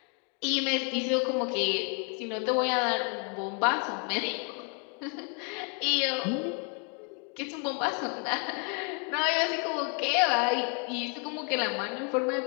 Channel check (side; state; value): right; quieter; 37.7 dB